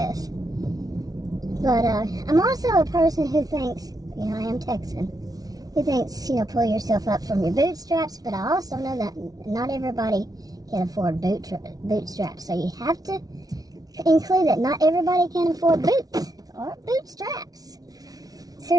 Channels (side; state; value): left; late; 0.18 ms